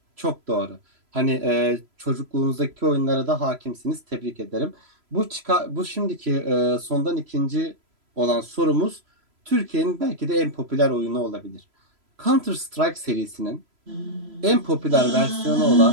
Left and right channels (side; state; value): left; late; 3.0 ms